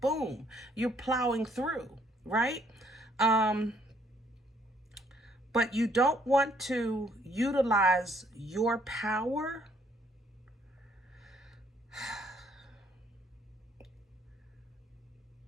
you're plowing through, right? But you don't want to utilize your power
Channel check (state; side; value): normal; both; correlation 0.66